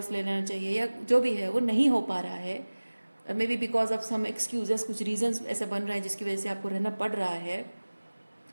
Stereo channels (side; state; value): both; inverted; correlation -1.00